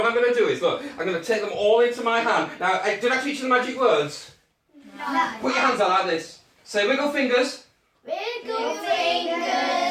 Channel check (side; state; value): both; identical; correlation 1.00